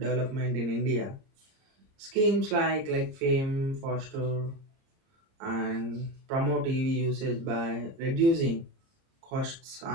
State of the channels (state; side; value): late; left; 30 ms